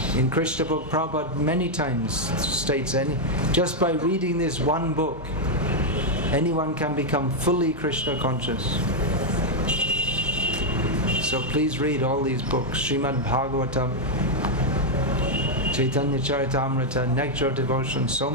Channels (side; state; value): both; normal; correlation 0.00